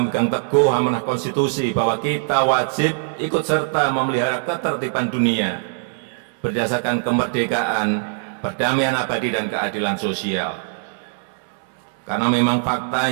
teguh amanah konstitusi bahwa kita wajib ikut serta memelihara ketertiban dunia berdasarkan kemerdekaan, perdamaian abadi dan keadilan sosial. Karena memang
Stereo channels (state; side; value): silent; left; digital silence